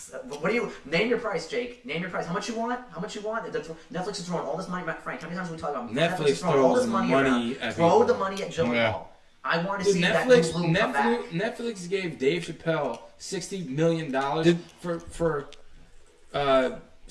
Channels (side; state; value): both; identical; correlation 1.00